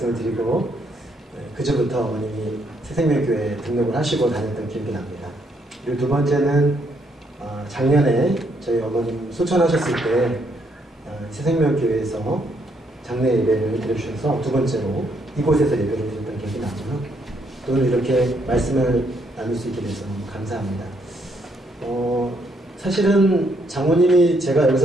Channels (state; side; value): normal; both; correlation 0.73